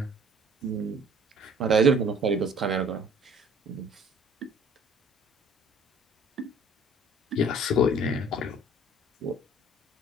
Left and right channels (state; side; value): normal; both; correlation 0.54